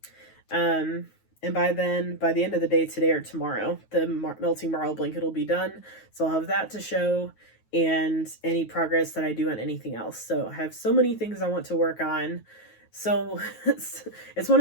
And by the end of the day today or tomorrow, the melting marble blanket will be done. So I'll have that to show, and any progress that I do on anything else. So I have so many things I want to work on. So it's one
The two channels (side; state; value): right; late; 9.3 ms